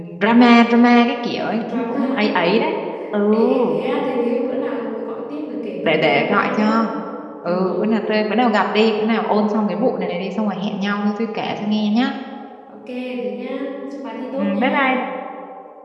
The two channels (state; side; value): identical; both; correlation 1.00